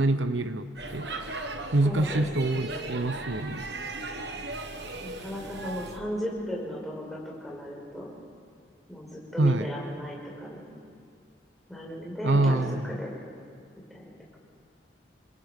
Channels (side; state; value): both; normal; correlation 0.71